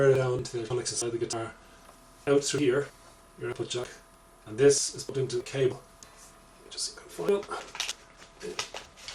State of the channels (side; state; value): both; identical; correlation 1.00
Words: it down to the electronics inside the guitar, out through here, your output jack, and this is put into the cable. Just find it.